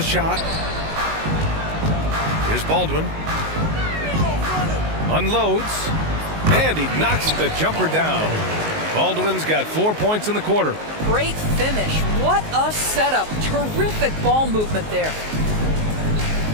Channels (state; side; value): late; left; 19 ms